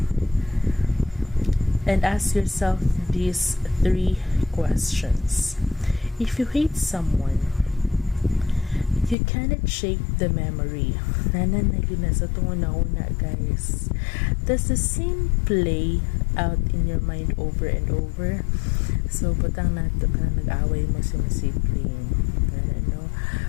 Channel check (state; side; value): drops out; right; at 9.2 s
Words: And ask yourself these 3 questions. If you hate someone, you cannot shake the memory. Nanan na yun na sa tunguna, guys. Does the same play out in your mind over and over? So, butang nato ka nag-away mo si masibling. No?